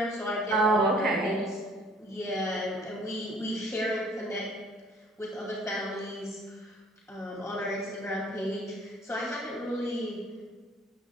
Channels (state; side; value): normal; both; correlation 0.55